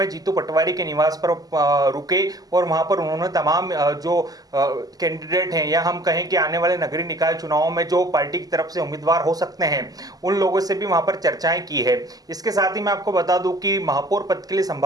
जीतू पटवारी के निवास पर रुके और वहां पर उन्होंने तमाम जो कैंडिडेट हैं या हम कहें कि आने वाले नगरीय निकाय चुनाव में जो पार्टी की तरफ से उम्मीदवार हो सकते हैं उन लोगों से भी वहां पर चर्चाएं की है। इसके साथ ही मैं आपको बता दूं कि महापौर पद के लिए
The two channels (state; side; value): late; left; 0.18 ms